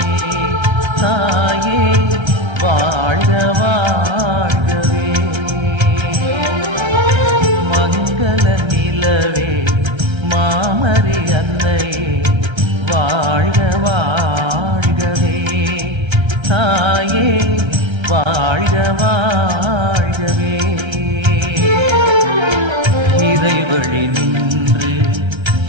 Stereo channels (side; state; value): left; late; 1.3 ms